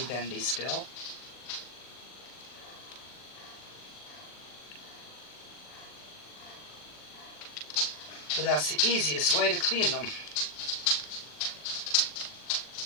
bendy still. But that's the easiest way to clean them.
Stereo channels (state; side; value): late; right; 40 ms